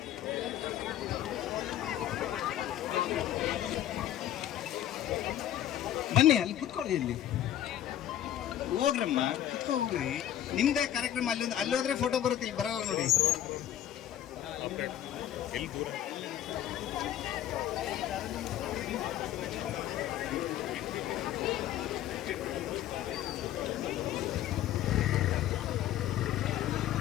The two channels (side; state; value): right; quieter; 11.7 dB